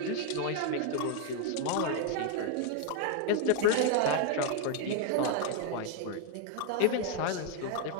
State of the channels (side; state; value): both; different; correlation 0.00